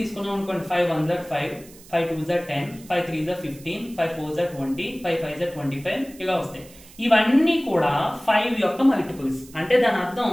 తీసుకున్నాం అనుకోండి. 5 1 is 5, 5 2 is 10, 5 3 is 15, 5 4 is 20, 5 5 is 25 ఇలా వస్తాయి. ఇవన్నీ కూడా 5 యొక్క మల్టిపుల్స్. అంటే దాని అర్థం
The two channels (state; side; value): noise; right; hiss, 22 dB below the sound